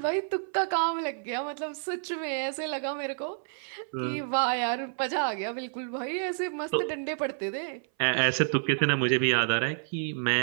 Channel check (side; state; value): left; silent; 58 dB below the other